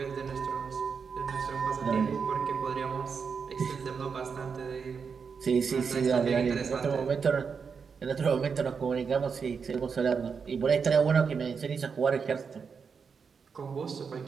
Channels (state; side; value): quieter; left; 5.9 dB